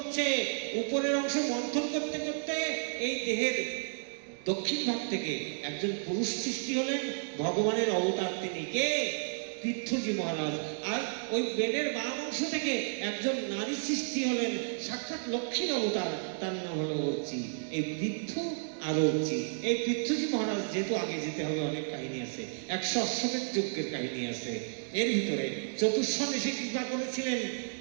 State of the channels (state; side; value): silent; left; digital silence